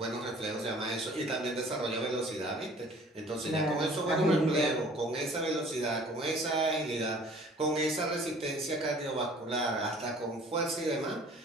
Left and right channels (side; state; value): both; normal; correlation 0.51